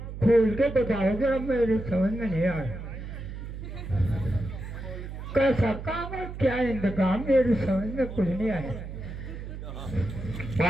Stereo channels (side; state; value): right; noise; hum, 9 dB below the sound